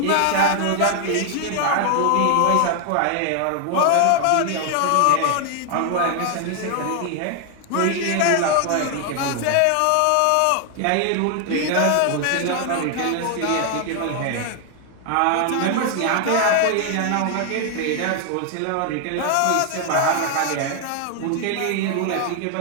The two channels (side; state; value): both; different; correlation 0.00